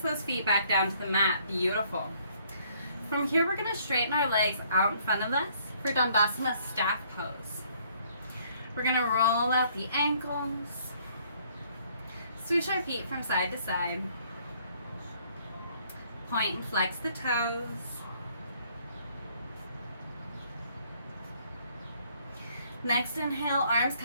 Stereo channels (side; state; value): both; inverted; correlation -0.64